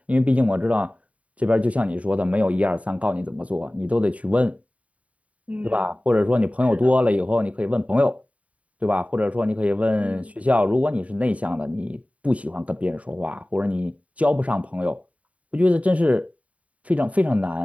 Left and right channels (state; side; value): late; left; 0.067 ms